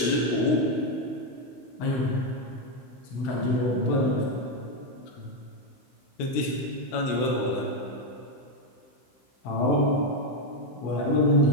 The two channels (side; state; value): right; late; 16 ms